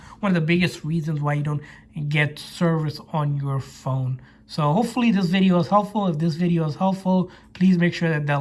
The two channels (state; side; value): identical; both; correlation 1.00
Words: one of the biggest reasons why you don't get service on your phone. So hopefully this video is helpful. If this video is helpful, please make sure that the